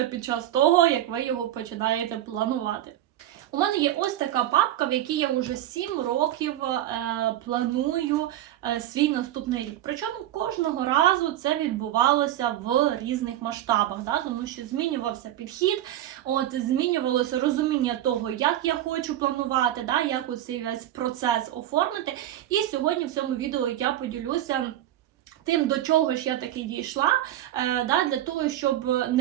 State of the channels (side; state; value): left; quieter; 12.9 dB